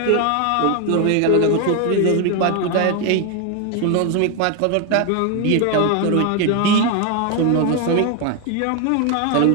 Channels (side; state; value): both; different; correlation 0.01